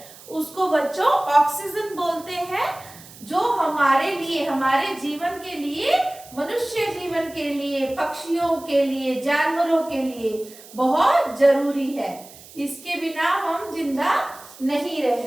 उसको बच्चों ऑक्सीजन बोलते हैं, जो हमारे लिए, हमारे जीवन के लिए, मनुष्य जीवन के लिए, पक्षियों के लिए, जानवरों के लिए बहुत जरूरी है। इसके बिना हम जिंदा नहीं रह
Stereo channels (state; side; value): noise; right; hiss, 20 dB below the sound